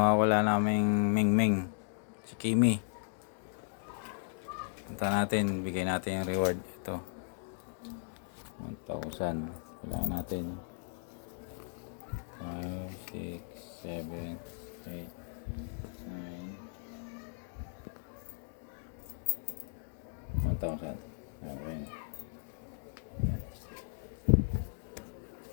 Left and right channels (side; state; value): right; silent; digital silence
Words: naming Mingming, si Kimi. Punta natin, bigay natin yung reward. Ito 1,000. Bilangin natin 5, 6, 7, 8, 9, 1,000. Ayan.